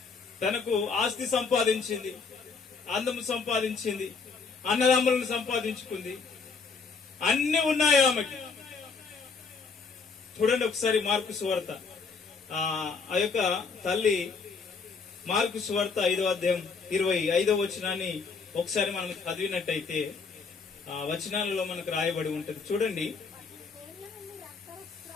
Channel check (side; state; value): right; quieter; 5.0 dB